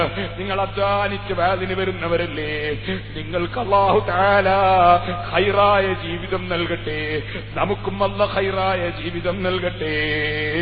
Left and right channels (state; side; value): identical; both; correlation 1.00